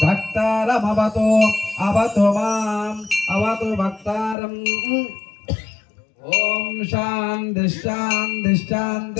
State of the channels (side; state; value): right; drops out; at 4.4 s